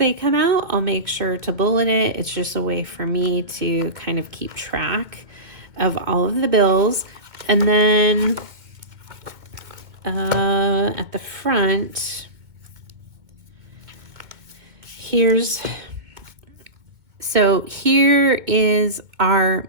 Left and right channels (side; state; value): left; late; 2.2 ms